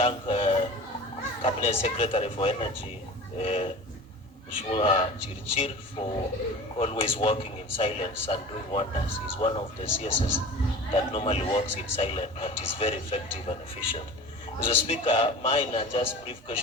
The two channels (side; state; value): both; normal; correlation 0.37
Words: Cabinet Secretary for Energy, Mheshimiwa Chirchir, for always working in silence and doing wonders. He's one of the CSS that normally works in silence, but is very effective and efficient. Mr. Speaker, mine are just brief